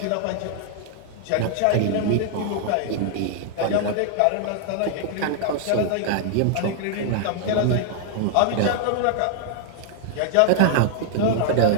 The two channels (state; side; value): different; both; correlation 0.00